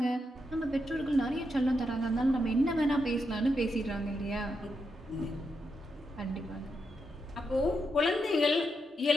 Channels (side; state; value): both; normal; correlation 0.83